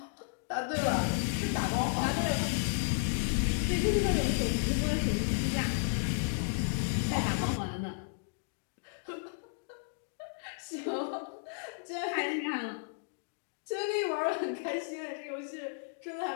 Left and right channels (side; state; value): right; silent; digital silence